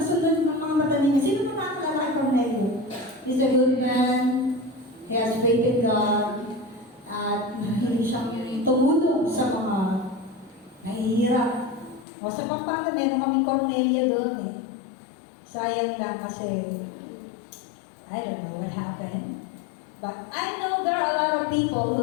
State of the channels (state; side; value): drops out; right; at 12.1 s